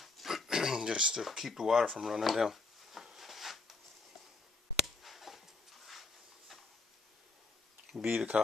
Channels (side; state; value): right; quieter; 3.7 dB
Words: just to keep the water from running down. Bead of